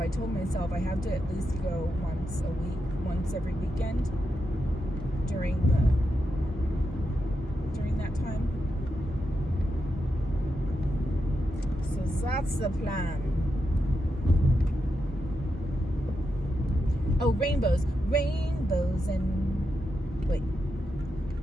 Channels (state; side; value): normal; both; correlation 0.86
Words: told myself I have to at least go once a week, once every weekend during that time. So that's the plan. Oh, rainbows and